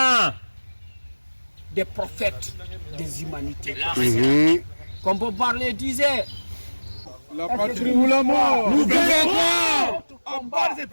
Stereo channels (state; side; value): inverted; both; correlation -1.00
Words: des prophètes des humanités. Comme Bob Marley disait, la patrie ou la mort. Nous vaincrons. En bas des